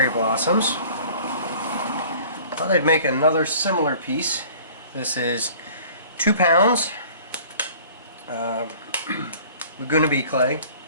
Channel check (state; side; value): inverted; both; correlation -0.49